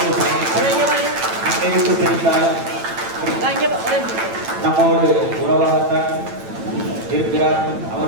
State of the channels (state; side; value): late; left; 9.1 ms